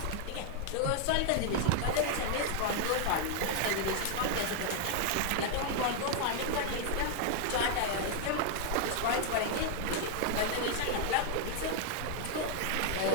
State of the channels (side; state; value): both; different; correlation 0.00